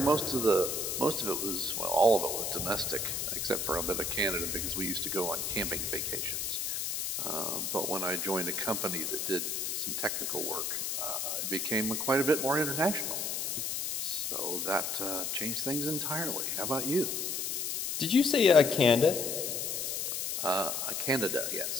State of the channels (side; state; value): left; noise; hiss, 1 dB below the sound